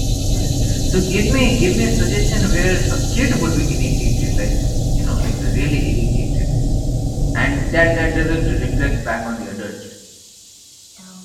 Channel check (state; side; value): identical; both; correlation 1.00